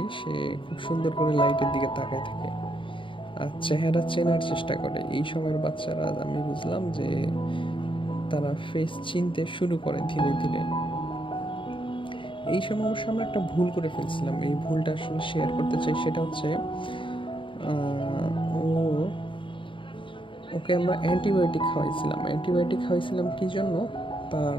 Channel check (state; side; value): late; right; 0.25 ms